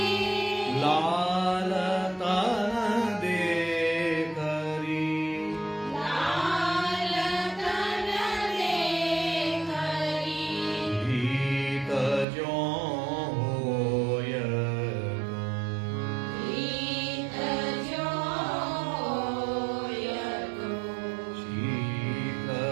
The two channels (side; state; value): left; drops out; at 12.2 s